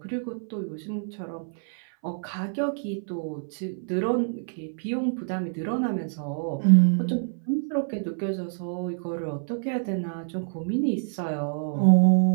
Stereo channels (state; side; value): silent; left; 57 dB below the other